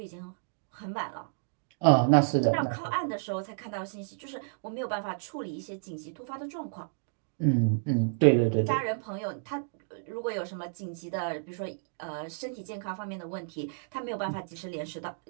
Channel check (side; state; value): left; silent; digital silence